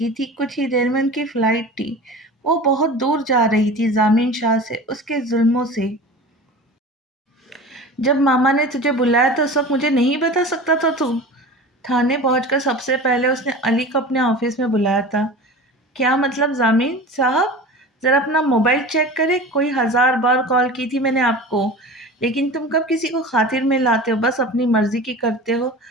تھی، کچھ ہی دیر میں ان کی فلائٹ تھی۔ وہ بہت دور جا رہی تھی ضامن شاہ سے، اس کے ظلموں سے۔ جب ماما نے تجھے بلایا تو اس وقت مجھے نہیں بتا سکتا تھا تم؟ تھانے پہنچ کر سب سے پہلے اس نے علی کو اپنے آفس میں بلایا تھا۔ کیا مطلب ضامن صاحب؟ ذرا اپنا موبائل چیک کرے، کوئی 1000 بار کال کی تھی میں نے آپ کو، لیکن تم کب کسی کو خاطر میں لاتے ہو؟ بس اپنی مرضی کی کرتے ہو۔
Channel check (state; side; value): normal; both; correlation 0.35